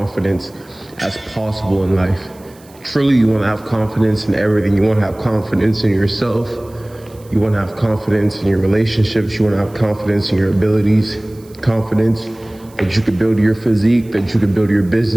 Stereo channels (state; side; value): noise; right; hiss, 27 dB below the sound